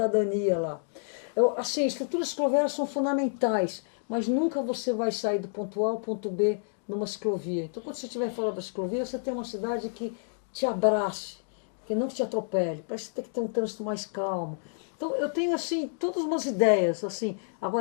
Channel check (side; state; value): right; silent; digital silence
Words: lá. Assim, estruturas cicloviárias são fundamentais, mas nunca você vai sair do ponto A ao ponto B numa ciclovia. Então quando você estiver fora da ciclovia, você tem uma cidade que te abrace, que não te atropele, parece que tem que ter um trânsito mais calmo. Então eu tenho assim, todas umas ideias, assim.